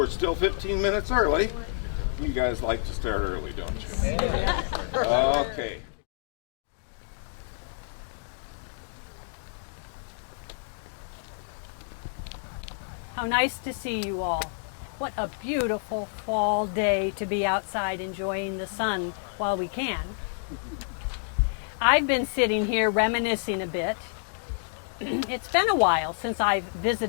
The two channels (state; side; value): silent; right; digital silence